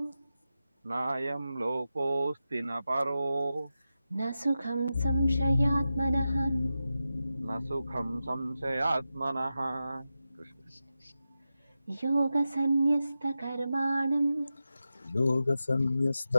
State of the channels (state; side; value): inverted; both; correlation -0.92